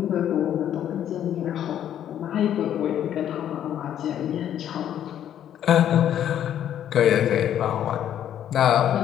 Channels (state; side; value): quieter; right; 10.5 dB